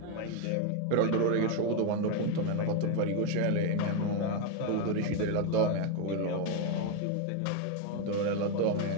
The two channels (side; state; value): both; different; correlation 0.02